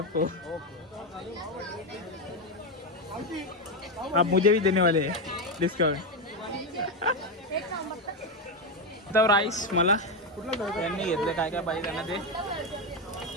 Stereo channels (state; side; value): normal; both; correlation 0.09